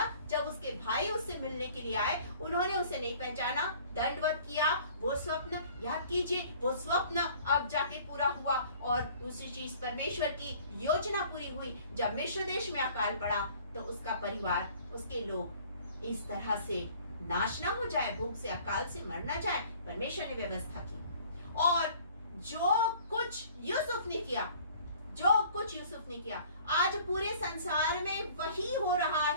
जब उसके भाई उससे मिलने के लिए आए, उन्होंने उसे नहीं पहचाना, दंडवत किया। वो स्वप्न याद कीजिए, वो स्वप्न अब जाके पूरा हुआ। और दूसरी चीज, परमेश्वर की योजना पूरी हुई। जब मिस्र देश में अकाल पड़ा तो उसका परिवार, उसके लोग इस तरह से नाश ना हो जाए, भूख से, अकाल से मर ना जाए, परमेश्वर ने व्यवस्था की। और जो कुछ यूसुफ ने किया आज पूरे संसार में वही हो रहा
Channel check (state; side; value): inverted; both; correlation -0.52